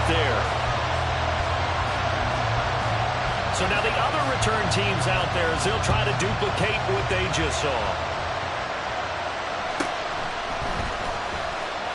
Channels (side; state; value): both; identical; correlation 1.00